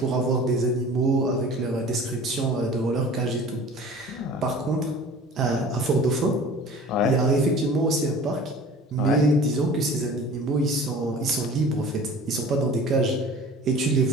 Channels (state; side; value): normal; both; correlation 0.43